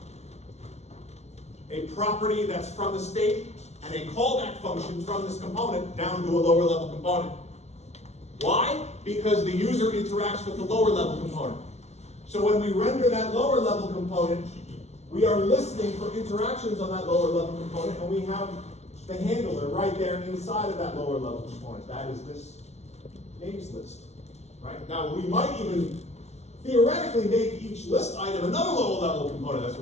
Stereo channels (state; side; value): late; right; 0.32 ms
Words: a property that's from the state and a callback function from this component down to a lower level component. Why? Because the user interacts with the lower level component. So when we render that lower level component, we are listening for interactions on that lower level component, and we have the handler right there inside of that lower level component. That is this names list. Right? Now we might even theoretically make each list item another lower level component. That's